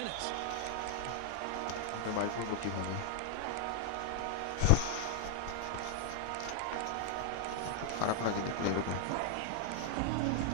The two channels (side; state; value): both; different; correlation 0.00